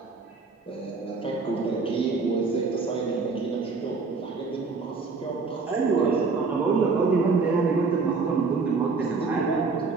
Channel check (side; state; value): left; quieter; 4.4 dB